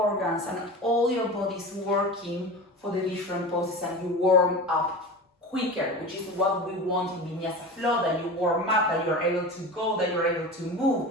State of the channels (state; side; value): normal; both; correlation 0.31